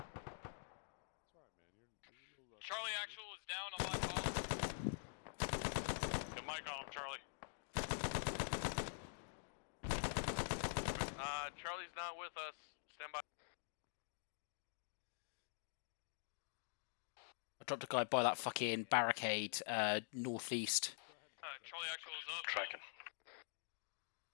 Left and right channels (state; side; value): silent; right; digital silence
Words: Charlie actual is down on my call. Get Mike on him, Charlie. Charlie's not with us. Stand by. I dropped a guy by that fucking barricade, northeast. Charlie actual is up. Tracking.